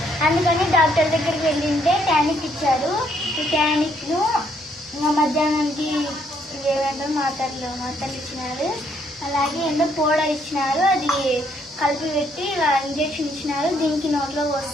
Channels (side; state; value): both; normal; correlation 0.70